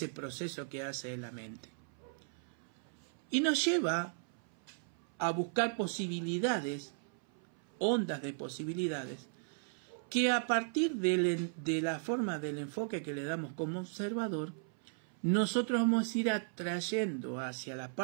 proceso que hace la mente. Y nos lleva a buscar posibilidades, ondas de posibilidades, que a partir de la forma del enfoque que le damos como observador, nosotros vamos a ir atrayendo hacia la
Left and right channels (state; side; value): silent; left; 53 dB below the other